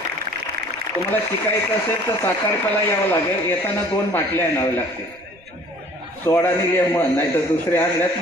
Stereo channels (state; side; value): noise; right; rumble, 28 dB below the sound